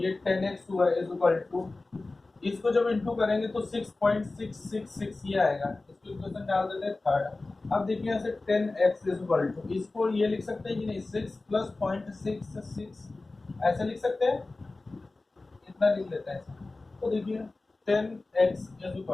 10x हुआ इज इक्वल टू, इसको जब इंटू करेंगे तो 6.666 ये आएगा। इसको इक्वेशन डाल देते हैं थर्ड। अब देखिए यहाँ से 10x इज इक्वल टू, इसको ये लिख सकते हैं कि नहीं, 6 प्लस 0.66 ऐसे लिख सकते हैं, इतना लिख लेते हैं। तो देखिए 10x is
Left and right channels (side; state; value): right; quieter; 3.3 dB